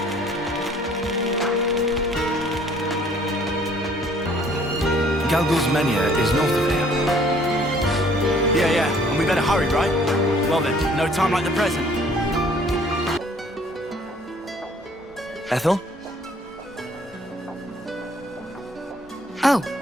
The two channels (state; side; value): normal; both; correlation 0.58